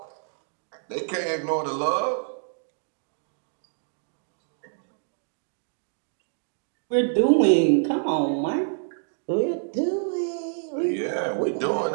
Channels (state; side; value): silent; left; digital silence